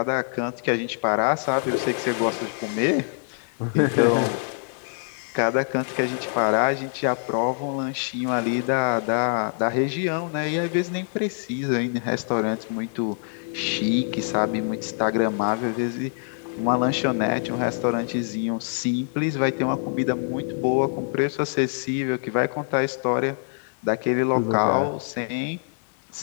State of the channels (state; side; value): silent; right; 57 dB below the other